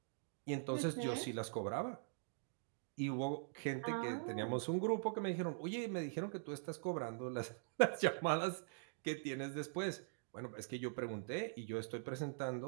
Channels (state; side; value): silent; left; digital silence